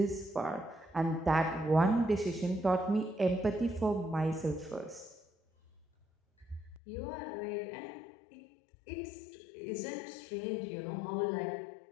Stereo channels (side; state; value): right; drops out; at 6.8 s